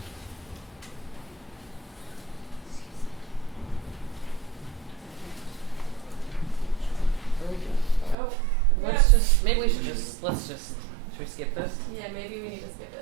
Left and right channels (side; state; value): left; drops out; at 8.2 s